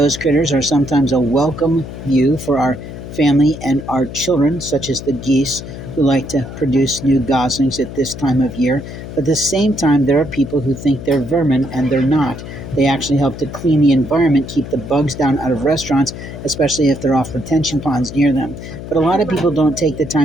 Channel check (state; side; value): noise; left; hum, 11 dB below the sound